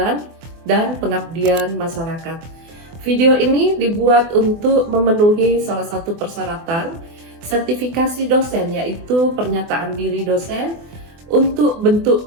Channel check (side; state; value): left; late; 24 ms